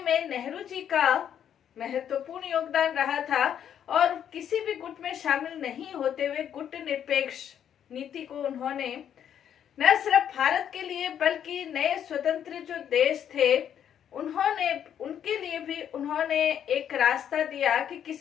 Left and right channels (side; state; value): right; quieter; 9.3 dB